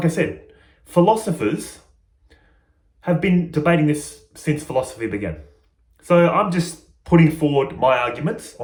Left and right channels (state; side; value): identical; both; correlation 1.00